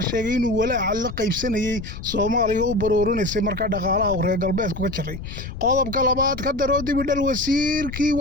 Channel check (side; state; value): left; noise; rumble, 10 dB below the sound